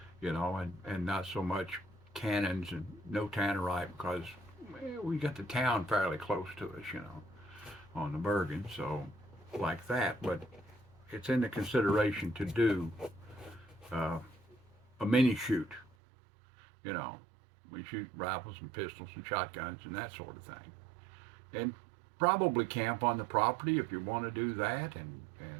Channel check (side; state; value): left; drops out; at 15.9 s